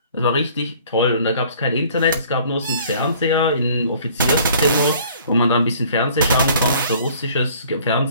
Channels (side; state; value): both; inverted; correlation -0.55